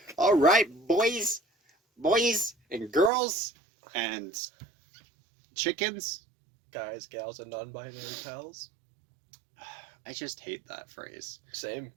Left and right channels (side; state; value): left; drops out; at 3.1 s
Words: All right, boys and girls and chickens. Guys, gals, and non-binary pals. I just hate that phrase. Same.